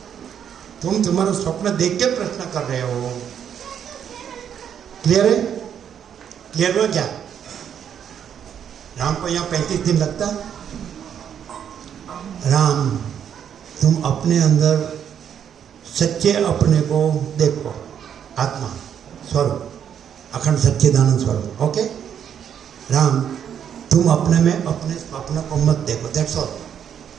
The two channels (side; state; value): left; quieter; 8.7 dB